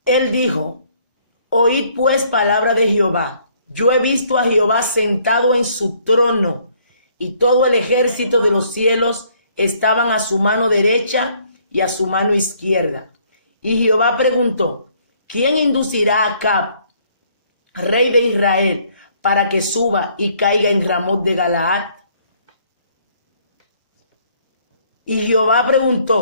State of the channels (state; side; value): inverted; both; correlation -0.64